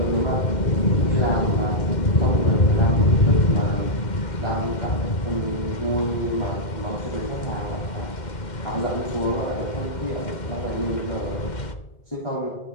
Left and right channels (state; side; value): late; right; 2.1 ms